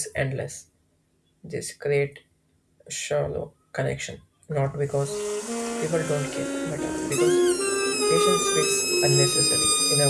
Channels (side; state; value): both; identical; correlation 1.00